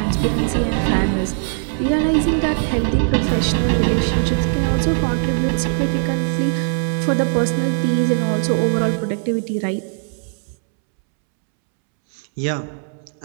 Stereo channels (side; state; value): left; silent; 66 dB below the other